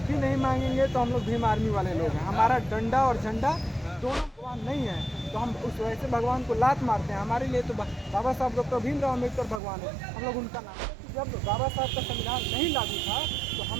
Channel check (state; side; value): drops out; left; at 9.6 s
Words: नहीं मांगेंगे तो हम लोग भीम आर्मी वाले लोग हैं। हमारा डंडा और झंडा दोनों भगवान नहीं है, तो हम उस वैसे भगवान को लात मारते हैं। हमारे लिए तो बाबा साहब डॉक्टर भीमराव अम्बेडकर भगवान है, हम लोग उनका नाम। जब बाबा साहब का संविधान नहीं लागू था तो हम